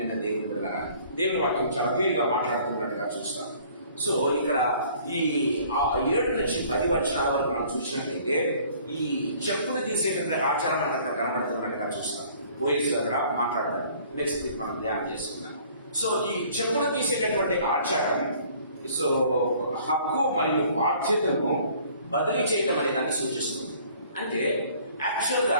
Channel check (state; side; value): inverted; both; correlation -0.55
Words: దేవుని బిడ్డలారా. దేవుని వాక్యం చాలా క్లియర్గా మాట్లాడుతున్నట్టుగా చూస్తాం. సో ఇక్కడ ఈ 7 నుంచి 10 వచనాల వరకు మనం చూసినట్లయితే ఈ చెప్పులు తీసేటువంటి ఆచారం మనకు అక్కడ కనబడుతున్నట్టుగా చూస్తాం. బోయస్ కూడా మాట్లాడతారు. నెక్స్ట్ వీక్ మనం ధ్యానం చేసుకుందాం. సో ఈ చెప్పులు తీసేటటువంటి ఆచారం సో హక్కు మరియు బాధ్యతను బదిలీ చేయటం అనే దాన్ని సూచిస్తుంది. అంటే యాక్చువల్